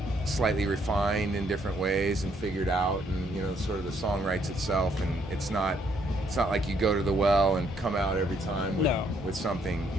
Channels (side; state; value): both; normal; correlation 0.70